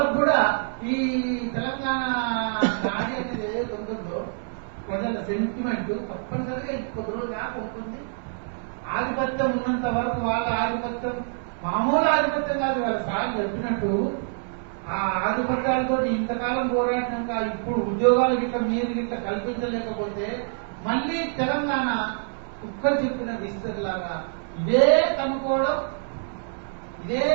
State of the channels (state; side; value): silent; left; 61 dB below the other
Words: కూడా ఈ తెలంగాణ నాడి అనేది ఏదైతే ఉంటుందో ప్రజల సెంటిమెంట్ తప్పనిసరిగా కొద్ది రోజులు దాకా ఉంటుంది. ఆధిపత్యం ఉన్నంత వరకు వాళ్ళ ఆధిపత్యం మామూలు ఆధిపత్యం కాదు. వాళ్ళ సార్ చెప్పినట్టు ఆ ఆధిపత్యాలతో ఇంతకాలం పోరాడినాక ఇప్పుడు ఉద్యోగాలు గిట్ల మీరు గిట్ల కల్పించలేకపోతే మళ్ళీ తెలంగాణ కుక్కలు చెప్పిన విస్తరిలాగా ఇదే కనుక్కోవడం, ఇదే